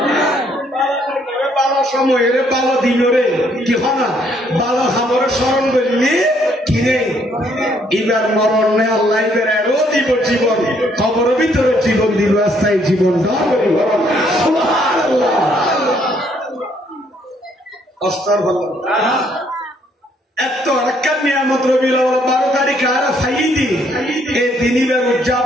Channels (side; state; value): both; normal; correlation 0.68